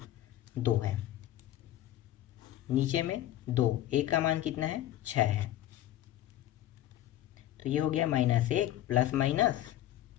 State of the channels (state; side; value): quieter; right; 13.5 dB